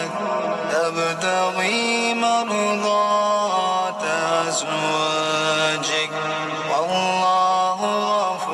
تبتغي مرضات أزواجك والله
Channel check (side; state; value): both; identical; correlation 1.00